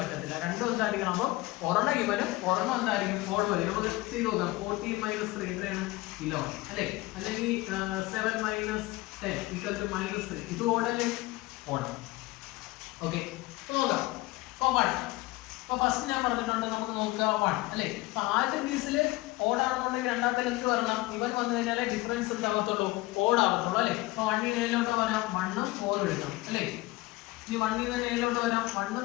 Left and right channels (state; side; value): quieter; right; 20.1 dB